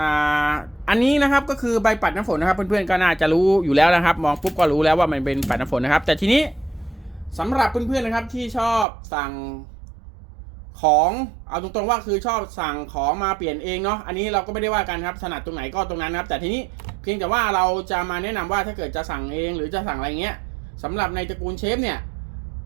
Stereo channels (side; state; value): left; drops out; at 8.8 s